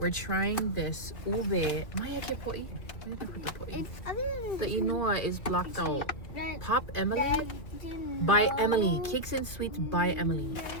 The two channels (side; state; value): right; late; 2.5 ms